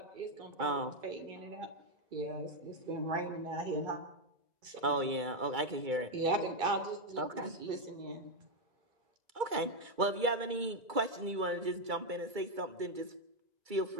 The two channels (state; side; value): late; left; 2.3 ms